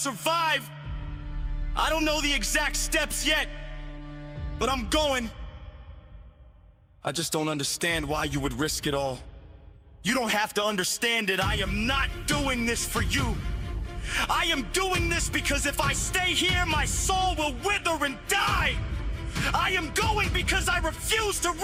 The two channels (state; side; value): identical; both; correlation 1.00